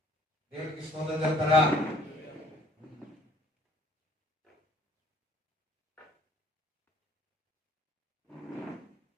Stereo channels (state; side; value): normal; both; correlation 0.57